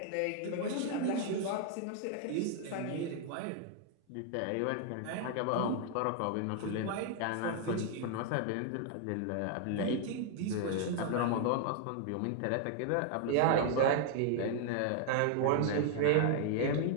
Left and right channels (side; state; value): both; different; correlation 0.00